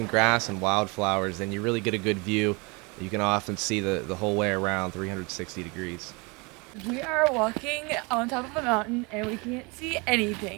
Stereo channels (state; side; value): quieter; left; 28.6 dB